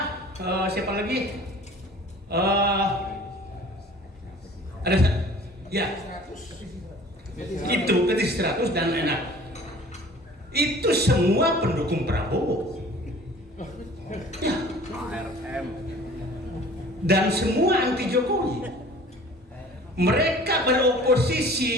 siapa lagi? Ada ya itu Petit 100 dan enak. Itu semua pendukung Prabowo. Ya. Dan semua anti Jokowi. Mereka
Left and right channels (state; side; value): normal; both; correlation 0.47